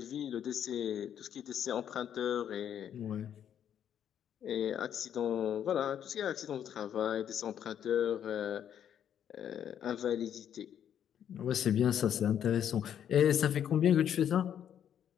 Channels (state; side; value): quieter; right; 9.5 dB